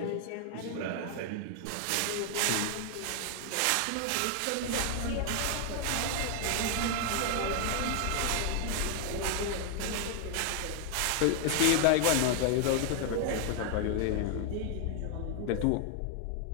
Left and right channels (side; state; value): both; different; correlation 0.00